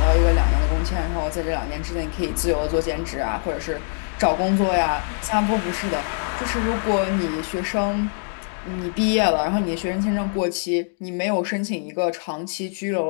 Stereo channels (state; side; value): silent; right; 63 dB below the other